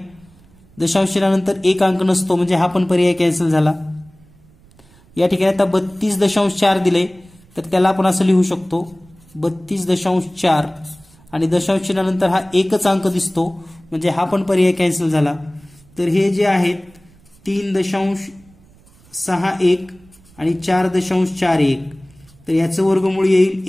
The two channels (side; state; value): right; noise; rumble, 28 dB below the sound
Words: दशांश चिन्हानंतर 1 अंक नसतो म्हणजे हा पण पर्याय कॅन्सल झाला. या ठिकाणी आता 32.4 दिले तर त्याला आपण असं लिहू शकतो 32.4 आणि दशांश चिन्हानंतर हा एकच अंक दिसतो म्हणजे हा पण पर्याय कॅन्सल झाला. तर हे जे आहेत 3.61 आणि 4.41 तर याचं वर्गमूळ येईल